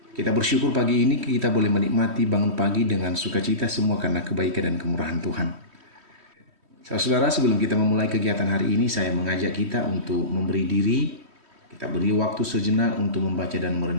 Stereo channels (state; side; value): late; left; 3.1 ms